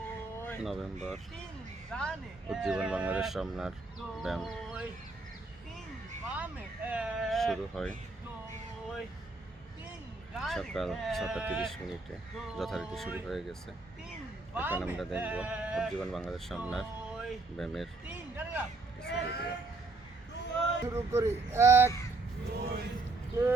নভেম্বর। উজ্জীবন বাংলাদেশ রমনার ব্যায়াম শুরু হয় সকাল 6:30 যথারীতি শুরু হয়ে গেছে। এখন আমরা দেখব উজ্জীবন বাংলাদেশ রমনার ব্যায়ামের কিছু ভিডিও। শুরু করি। 1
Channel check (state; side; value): quieter; left; 3.4 dB